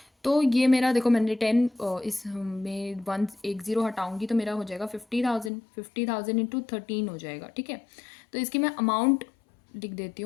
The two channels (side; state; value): right; drops out; at 5.5 s